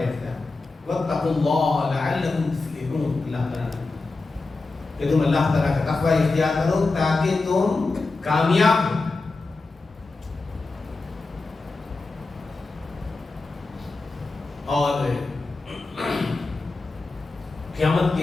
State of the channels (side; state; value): right; quieter; 3.6 dB